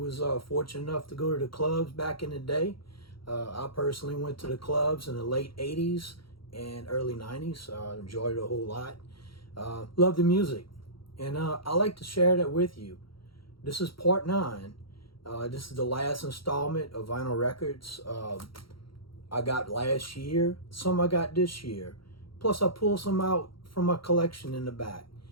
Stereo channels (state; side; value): late; right; 0.74 ms